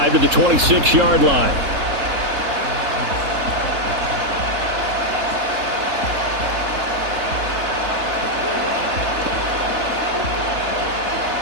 to the 26-yard line.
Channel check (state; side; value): late; left; 3.7 ms